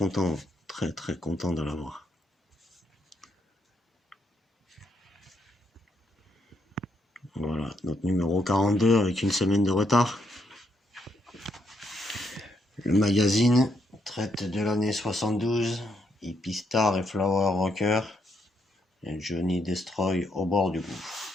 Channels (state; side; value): normal; both; correlation 0.76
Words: très content de l'avoir. Voilà, notre numéro 42 avec une semaine de retard. Le magazine traite de l'année 72, Hippie Star et Flower Rocker, et Johnny Destroy au bord du